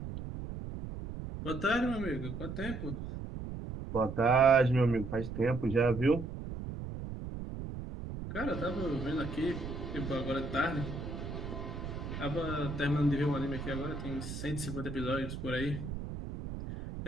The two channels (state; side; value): noise; right; rumble, 7 dB below the sound